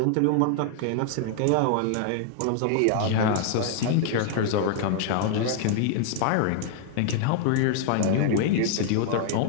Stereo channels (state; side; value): different; both; correlation 0.00